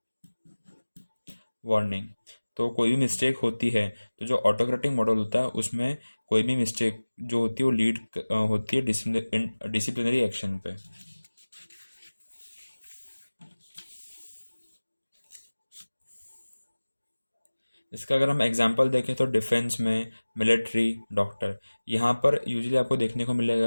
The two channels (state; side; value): inverted; both; correlation -1.00